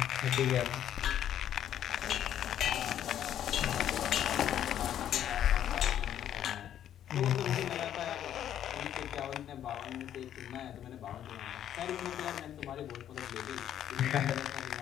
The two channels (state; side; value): quieter; right; 10.5 dB